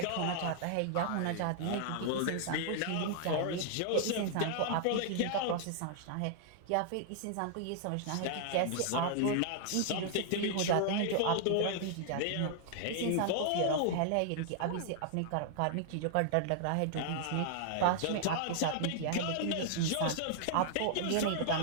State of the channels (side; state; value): both; different; correlation -0.01